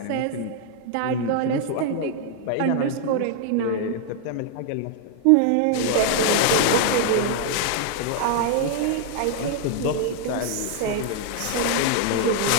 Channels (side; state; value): both; different; correlation 0.00